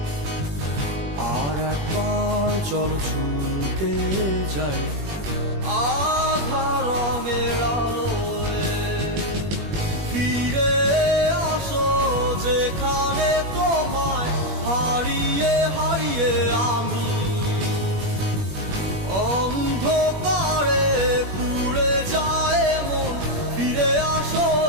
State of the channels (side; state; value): left; late; 21 ms